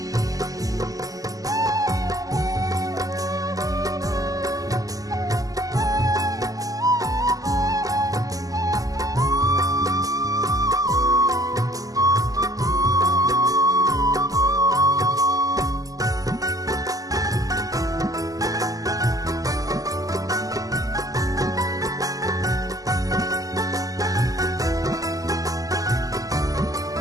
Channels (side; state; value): left; late; 0.17 ms